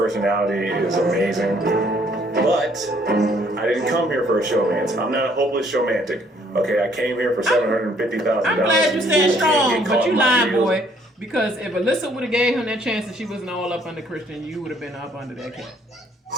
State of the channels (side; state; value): both; normal; correlation 0.64